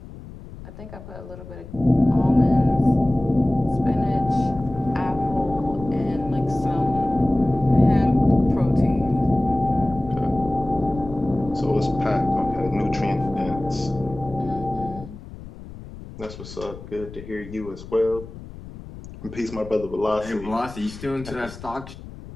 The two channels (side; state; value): left; noise; rumble, 15 dB below the sound